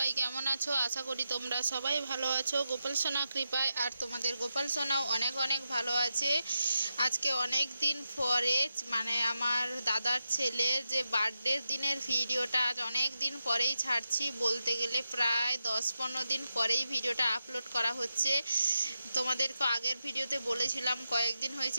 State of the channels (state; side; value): inverted; both; correlation -0.88